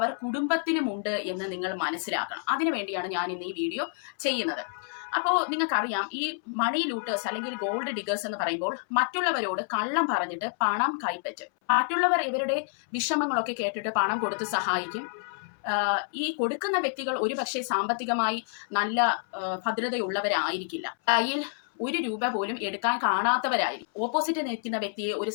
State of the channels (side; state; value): right; silent; 59 dB below the other